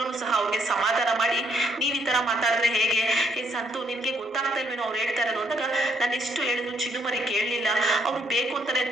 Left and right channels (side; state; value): both; normal; correlation 0.70